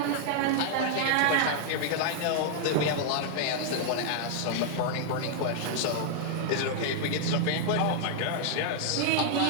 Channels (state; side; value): different; both; correlation -0.01